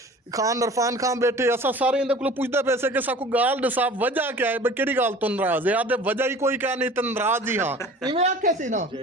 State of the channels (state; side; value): normal; both; correlation 0.43